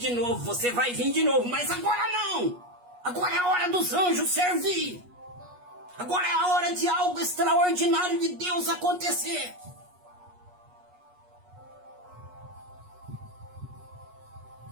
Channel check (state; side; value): late; left; 8.3 ms